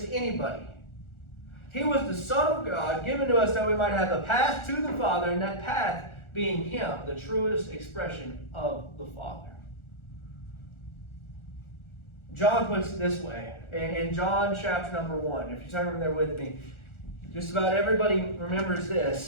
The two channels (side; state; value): right; late; 1.4 ms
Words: anybody. He was the Son of God given to us that we might have a path to the Father, and that path being Him, the truest expression of the Father. John puts it this way, in John chapter number 1, if you turn there with me, just about everybody remembers